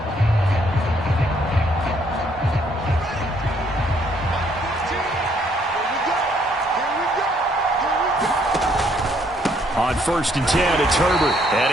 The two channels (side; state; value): both; normal; correlation 0.68